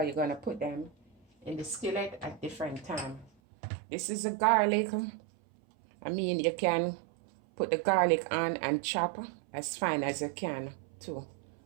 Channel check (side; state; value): left; drops out; at 3.3 s